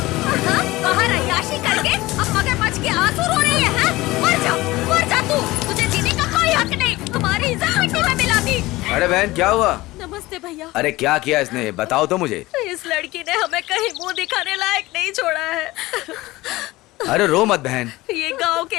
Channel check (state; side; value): quieter; right; 19.3 dB